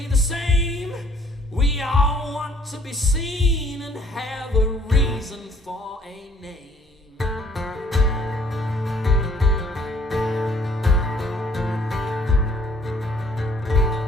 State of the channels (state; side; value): normal; both; correlation 0.61